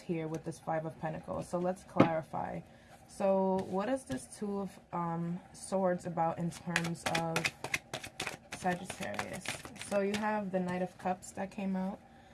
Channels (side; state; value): both; identical; correlation 1.00